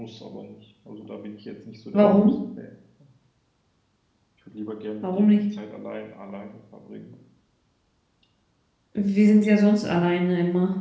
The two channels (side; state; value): both; identical; correlation 1.00